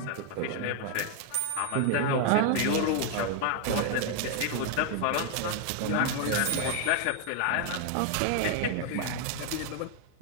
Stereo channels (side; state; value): both; different; correlation 0.00